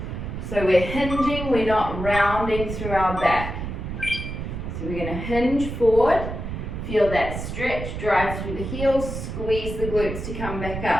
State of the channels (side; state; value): right; noise; rumble, 6 dB below the sound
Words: So we're hinging, we're not rounding through our back. So we're going to hinge forward, feel that stretch, drive through the heels, squeeze the glutes to come back